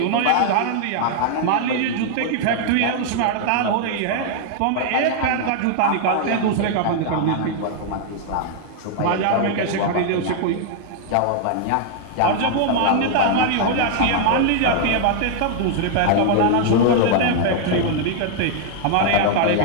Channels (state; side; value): different; both; correlation 0.00